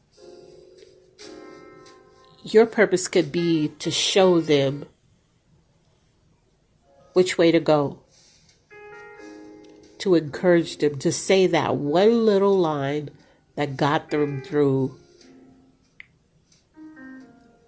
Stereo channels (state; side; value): identical; both; correlation 1.00